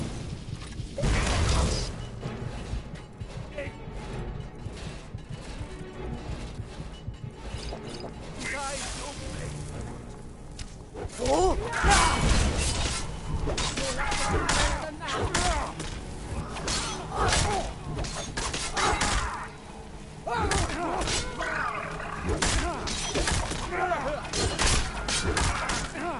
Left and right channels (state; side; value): identical; both; correlation 1.00